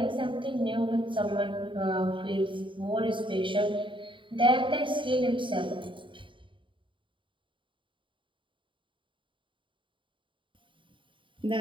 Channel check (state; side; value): late; left; 0.24 ms